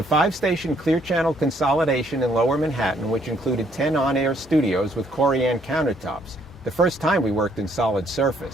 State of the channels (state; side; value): normal; both; correlation 0.67